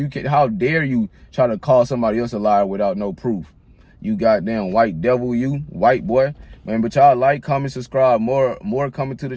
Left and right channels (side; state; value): both; identical; correlation 1.00